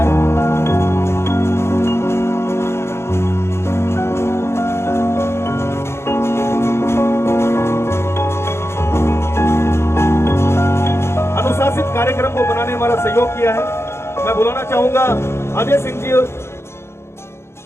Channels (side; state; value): right; late; 0.12 ms